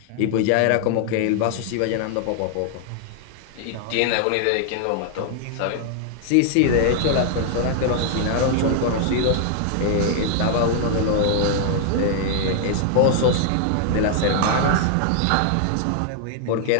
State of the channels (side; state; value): both; different; correlation 0.00